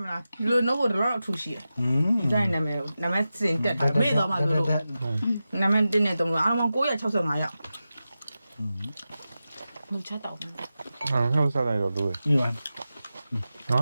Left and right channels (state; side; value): inverted; both; correlation -0.93